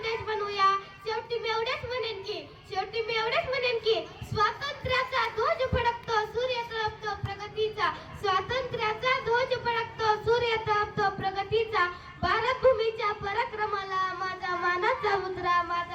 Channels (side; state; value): both; identical; correlation 1.00